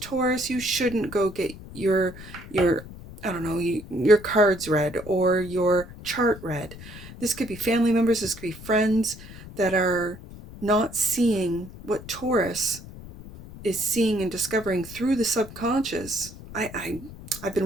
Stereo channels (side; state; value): left; noise; rumble, 15 dB below the sound